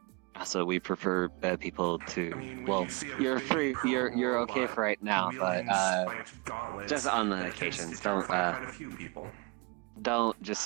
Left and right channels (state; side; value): quieter; left; 28.8 dB